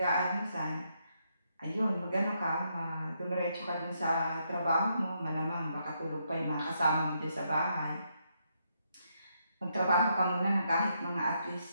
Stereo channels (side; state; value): both; inverted; correlation -0.78